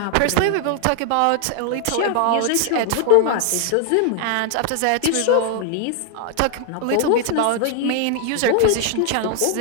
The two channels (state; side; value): different; both; correlation 0.00